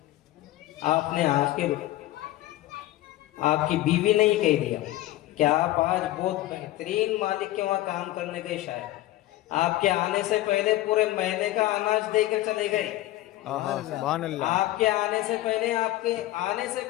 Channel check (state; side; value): quieter; right; 15.9 dB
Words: آپ نے آخر آپ کی بیوی نے ہی کہہ دیا کہ آپ آج بہت بہترین مالک کے وہاں کام کرنے گئے، شاید آپ کے آنے سے پہلے پورے مہینے کا اناج دے کر چلے گئے۔ سبحان اللہ، آپ کے آنے سے